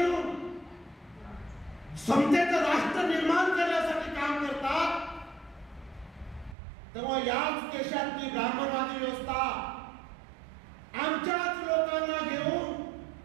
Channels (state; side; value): drops out; left; at 6.6 s